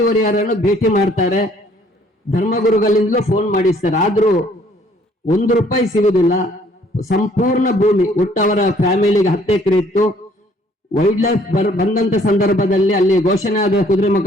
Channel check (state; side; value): normal; both; correlation 0.61